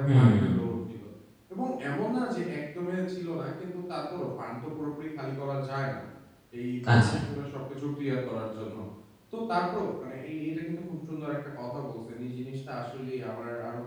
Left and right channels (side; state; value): both; identical; correlation 1.00